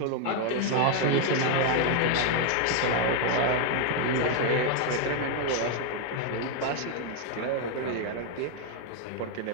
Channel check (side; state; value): both; different; correlation 0.01